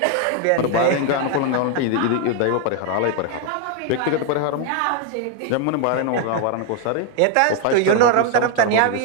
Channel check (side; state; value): both; different; correlation 0.01